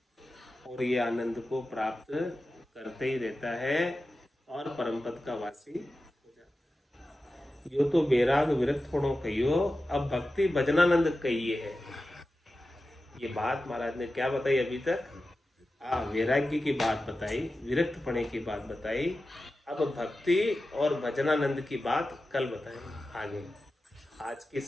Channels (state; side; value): normal; both; correlation 0.93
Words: और ये आनंद को प्राप्त करते ही रहता है और परम पद का वासी हो जाता है। यो तो बैराग विरक्त होनो कहियो, अब भक्ति भजनानंद कहिए है। ये बात महाराज ने क्या बताई अभी तक? वैराग्य की बात बताई, विरक्त पने की बात बताई, अब भक्ति और भजनानंद की बात कल बताएंगे आगे। आज की